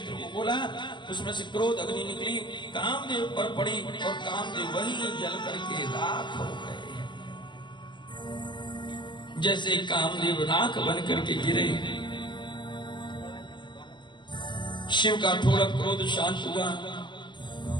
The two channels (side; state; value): right; late; 0.22 ms